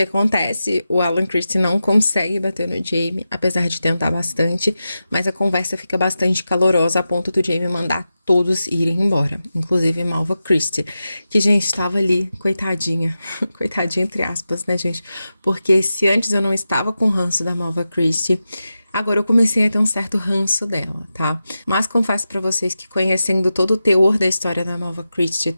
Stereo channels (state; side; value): inverted; both; correlation -0.92